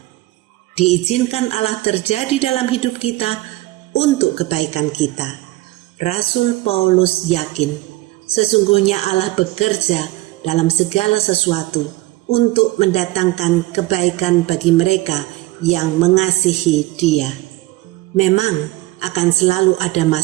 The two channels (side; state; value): left; quieter; 18.7 dB